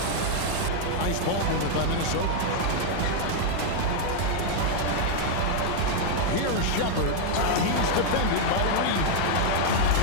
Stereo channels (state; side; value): different; both; correlation 0.00